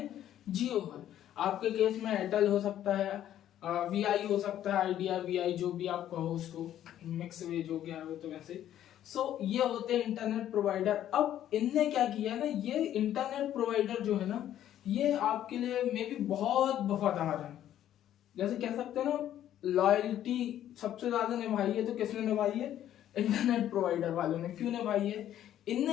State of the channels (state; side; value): quieter; right; 11.5 dB